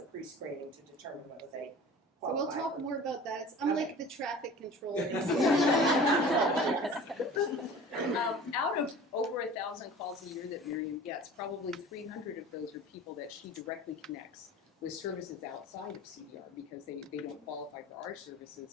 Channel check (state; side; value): normal; both; correlation 0.41